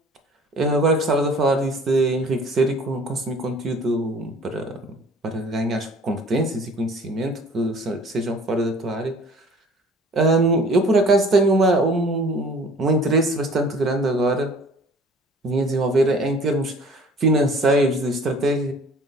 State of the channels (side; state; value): both; normal; correlation 0.49